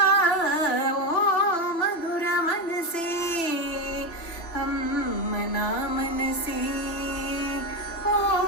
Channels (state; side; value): late; right; 3.0 ms